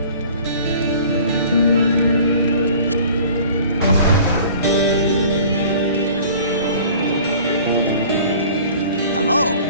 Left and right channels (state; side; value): inverted; both; correlation -0.47